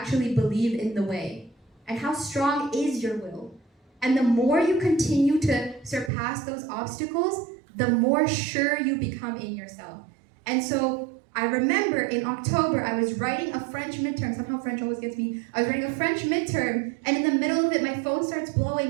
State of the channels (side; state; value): left; drops out; at 6.1 s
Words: believe in the way? And how strong is your will? And the more you continue to surpass those obstacles, the more sure you become in yourself. And so I remember in October, I was writing a French midterm. Somehow French always gets me. I was writing a French midterm, and in the middle of it, my phone starts